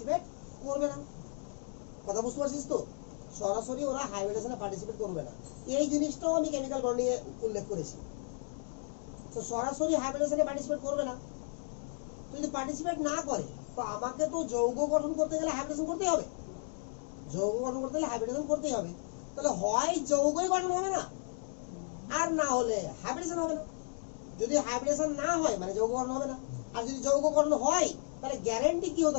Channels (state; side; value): silent; right; 55 dB below the other